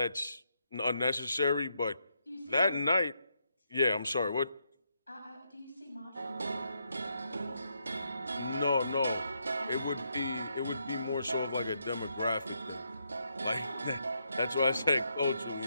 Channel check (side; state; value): both; inverted; correlation -0.79